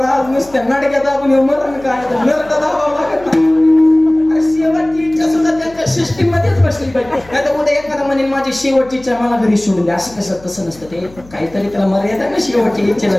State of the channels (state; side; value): noise; left; hum, 23 dB below the sound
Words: नुसत्या नाटक्यात आपण मरण काय नरक दाबावं लागत नाही. शेवटची इच्छा सुद्धा त्यांच्या सिस्टीम मध्येच बसली पाहिजे. नाही तर उद्या एखादा म्हणेन माझी शेवटची इच्छा मला घरी सोडून द्या, असं कसं तसं नसतं. ते काहीतरी त्याला मर्यादा ना शेवटची इच्छेला